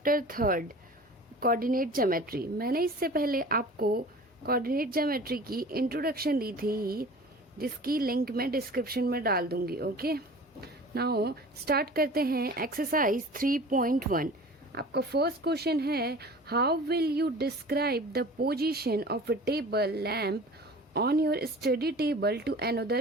3rd coordinate geometry। मैंने इससे पहले आपको coordinate geometry की इंट्रोडक्शन दी थी जिसकी लिंक मैं डिस्क्रिप्शन में डाल दूंगी। ओके, नाउ स्टार्ट करते हैं एक्सरसाइज 3.1। आपका फर्स्ट क्वेश्चन है, how will you describe the position of a table lamp on your study table to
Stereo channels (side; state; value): both; normal; correlation 0.41